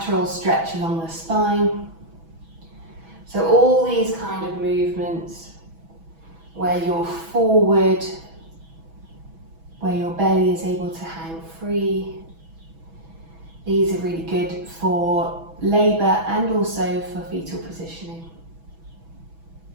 stretch along the spine. So all these kind of movements where you're forward, where your belly is able to hang free, these are really good for labour and also for fetal positioning.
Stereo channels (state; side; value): late; left; 6.1 ms